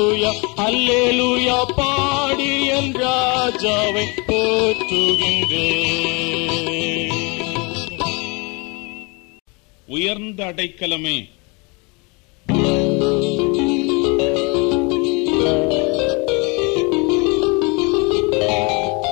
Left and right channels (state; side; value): quieter; right; 29.5 dB